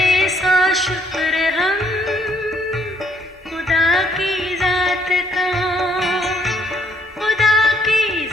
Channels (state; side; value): normal; both; correlation 0.67